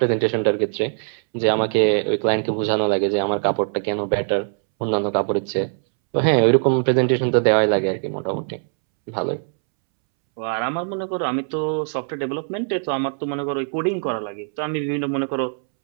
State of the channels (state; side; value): silent; left; 64 dB below the other